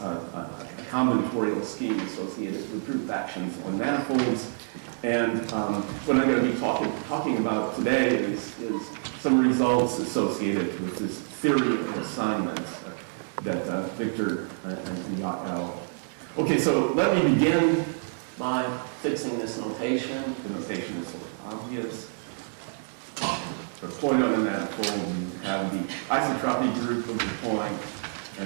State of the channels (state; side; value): silent; left; digital silence